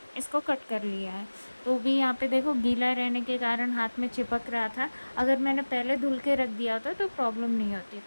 इसको कट कर लिया है। तो भी यहाँ पे देखो गीला रहने के कारण हाथ में चिपक रहा था। अगर मैंने पहले धुल के रख दिया होता तो प्रॉब्लम नहीं होती।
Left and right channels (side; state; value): both; inverted; correlation -1.00